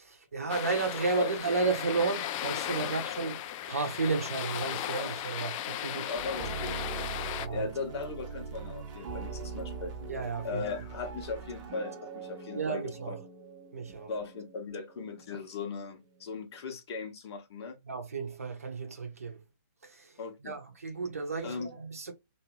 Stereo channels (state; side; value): inverted; both; correlation -0.42